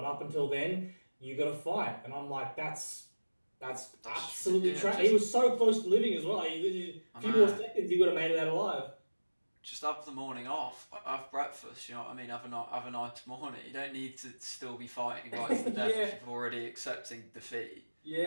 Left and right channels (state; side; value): inverted; both; correlation -1.00